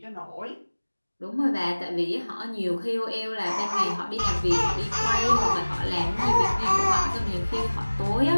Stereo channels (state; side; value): inverted; both; correlation -1.00